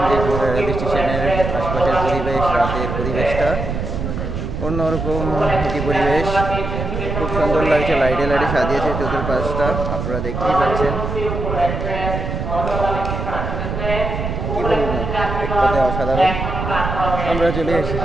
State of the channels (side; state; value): right; noise; rumble, 4 dB below the sound